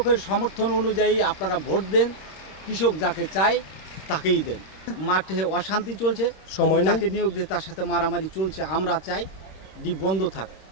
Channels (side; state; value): right; late; 26 ms